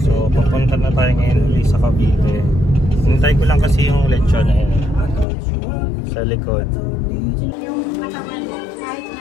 so papunta na tayo ngayon ulit sa Cavite. Hintay ko lang kasi yung lechon na yun sa likod.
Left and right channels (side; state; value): right; drops out; at 5.2 s